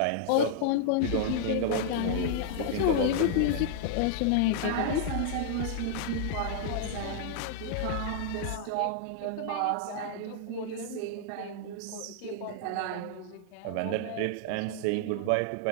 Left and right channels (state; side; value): different; both; correlation -0.01